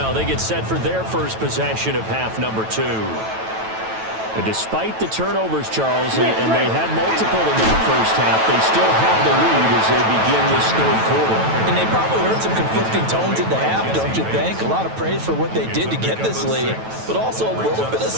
They get set for their first possession of half number 2. And despite the turnovers, Charles, and they had multiple in that first half, they still have the lead as they begin this third quarter. And they probably heard some conflicting tones at the half, don't you think? A lot of praise for what they did to get this lead, but also a little bit of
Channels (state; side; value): late; left; 9.1 ms